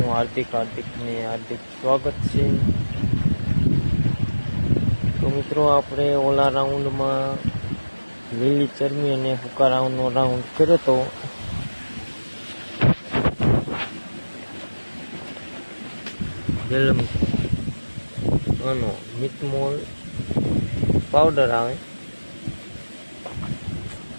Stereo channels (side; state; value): both; inverted; correlation -1.00